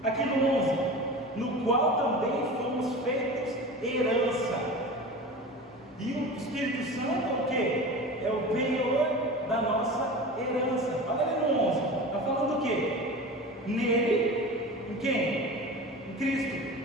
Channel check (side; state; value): both; normal; correlation 0.33